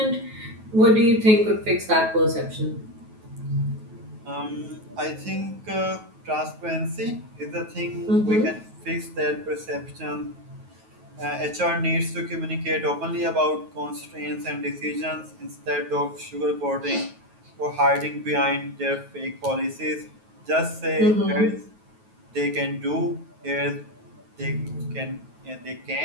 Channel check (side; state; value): left; late; 9.3 ms